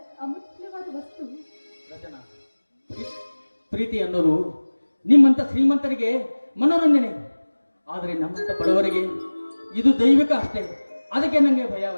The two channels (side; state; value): both; inverted; correlation -1.00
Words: ಅಮೂಲ್ಯವಾದ ವಸ್ತು. ರಚನಾ, ಪ್ರೀತಿ ಅನ್ನೋದು ನಿಮ್ಮಂತ ಶ್ರೀಮಂತರಿಗೆ ಮನೋರಂಜನೆ, ಆದರೆ ನಮ್ಮಂತ ಬಡವರಿಗೆ ಇದು ದೈವಿಕ ಅಷ್ಟೇ. ಅದಕ್ಕೆ ನನಗೆ ಭಯ